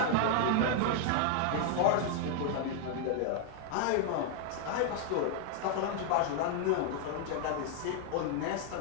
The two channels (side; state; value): both; different; correlation 0.00